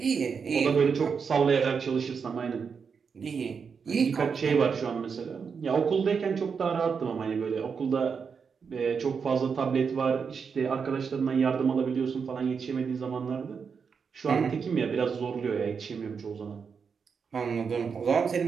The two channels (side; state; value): left; quieter; 6.0 dB